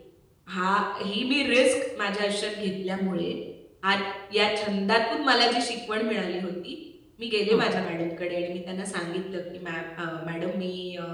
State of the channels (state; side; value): identical; both; correlation 1.00